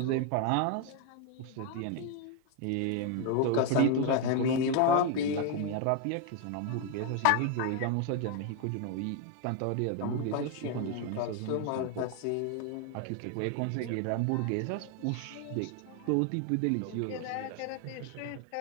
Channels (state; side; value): different; both; correlation 0.01